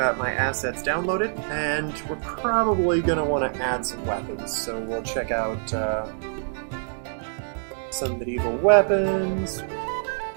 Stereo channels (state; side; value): silent; left; digital silence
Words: my assets downloaded, and we're probably going to want to add some weapons. So we'll check out some medieval weapons.